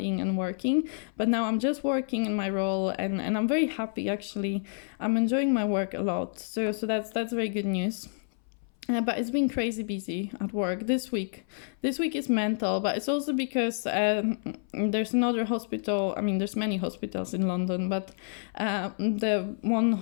and working, but now I'm just working in my role, and I'm very happy, actually. I'm enjoying my work a lot. So that's very good news. But it's been crazy busy at work this week. This week is mental, but it's also because there's another hospital. I mean, there's many hospitals in London, but the one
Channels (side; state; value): right; silent; 59 dB below the other